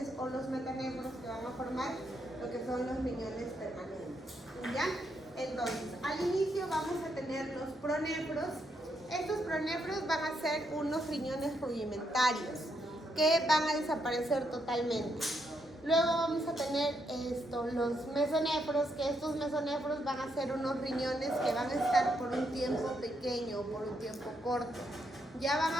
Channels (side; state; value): both; normal; correlation 0.78